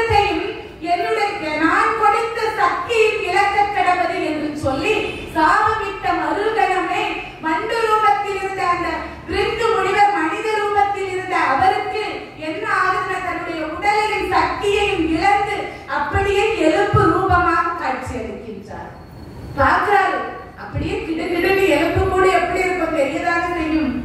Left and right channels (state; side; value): identical; both; correlation 1.00